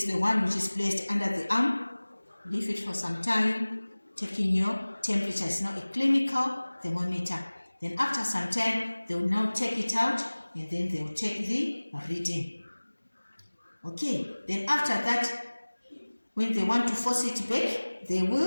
the one which is placed under the arm. Leave it for some time, taking your temperature. It's now a clinical thermometer. Then after some time, they will now take it out, and then they will take the reading. Okay, then after that, when they want to force it back, they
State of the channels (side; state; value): both; inverted; correlation -1.00